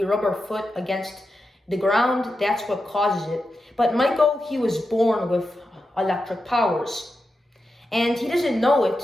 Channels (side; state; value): both; normal; correlation 0.89